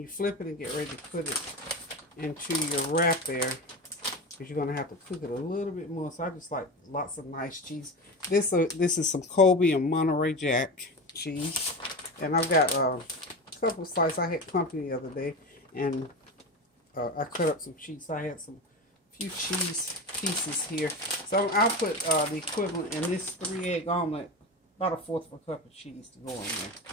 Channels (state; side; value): normal; both; correlation 0.25